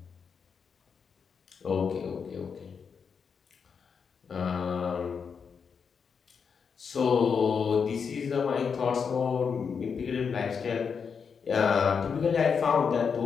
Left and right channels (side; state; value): right; quieter; 6.2 dB